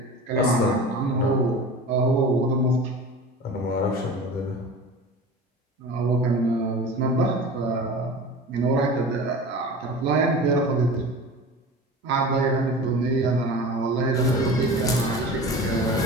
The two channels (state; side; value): normal; both; correlation 0.35